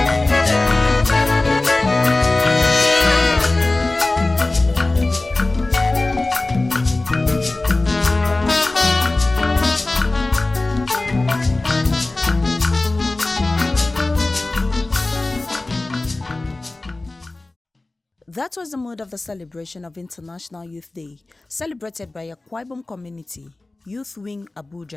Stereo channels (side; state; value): right; quieter; 3.0 dB